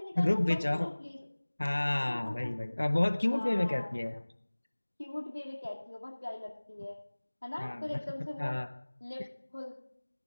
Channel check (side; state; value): both; inverted; correlation -1.00